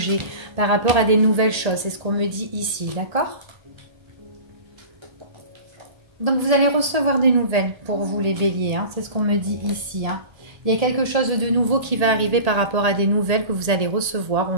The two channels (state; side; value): late; left; 1.8 ms